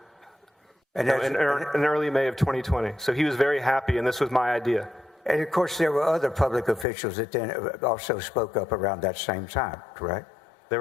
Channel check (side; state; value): right; drops out; at 6.9 s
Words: in early May of 2020. So he was very happy, and this was my idea. And of course, there were other public officials that then also spoke up around that same time, correct? There